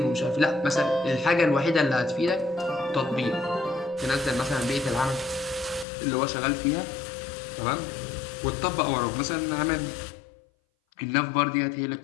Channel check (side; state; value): right; drops out; at 5.9 s